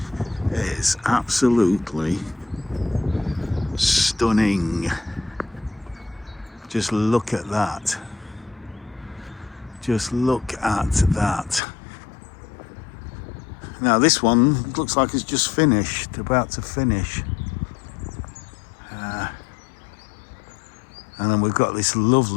It is absolutely stunning. Just look at that. Just look at that. Now this one looks like it's just finished, about to finish. And then we've got this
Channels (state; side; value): drops out; right; at 11.6 s